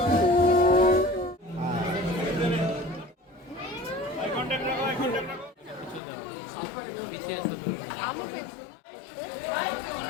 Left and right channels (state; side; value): drops out; right; at 6.0 s